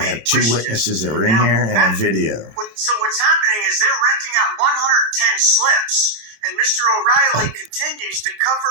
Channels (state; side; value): late; left; 27 ms